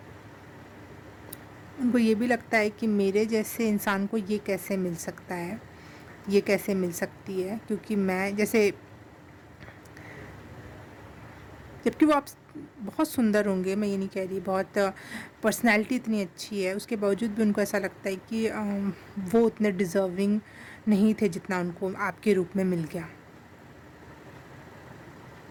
उनको ये भी लगता है कि मेरे जैसे इंसान को ये कैसे मिल सकता है, ये कैसे मिल सकती है, क्योंकि मैं जैसे जबकि वो आप बहुत सुंदर होंगे, मैं ये नहीं कह रही, बहुत पर्सनैलिटी इतनी अच्छी है, उसके बावजूद भी उनको ऐसा लगता है कि वो उतने डिज़र्विंग नहीं थे जितना उनको आपके रूप में मिल गया।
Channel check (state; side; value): identical; both; correlation 1.00